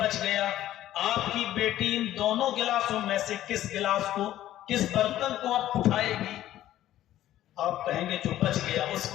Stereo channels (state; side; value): quieter; right; 13.3 dB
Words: گیا. آپ کی بیٹی ان دونوں گلاسوں میں سے کس گلاس کو, کس برتن کو آپ اٹھائے گی؟ آپ کہیں گے جو بچ گیا اس